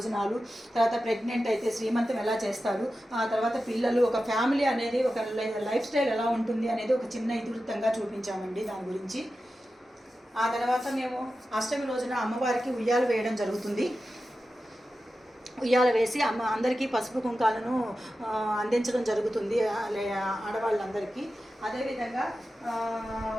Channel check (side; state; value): both; normal; correlation 0.92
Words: తర్వాత ప్రెగ్నెంట్ అయితే శ్రీమంతం ఎలా చేస్తారు, ఆ తర్వాత పిల్లలు, ఒక ఫ్యామిలీ అనేది ఒక లైఫ్ స్టైల్ ఎలా ఉంటుంది అనేది ఒక చిన్న ఇతివృత్తంగా చూపించామండి దాని గురించి. ఆ తర్వాత మేము అష్టమి రోజున అమ్మవారికి ఉయ్యాలు వేయడం జరుగుతుంది. ఉయ్యాల వేసి అందరికీ పసుపు కుంకాలను అందించడం జరుగుతుంది ఆడవాళ్ళందరికీ. అదేవిధంగా